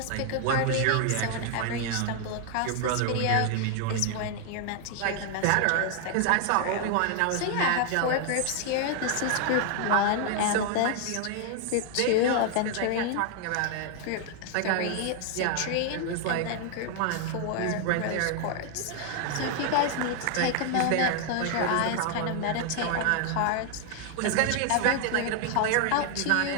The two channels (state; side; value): different; both; correlation 0.00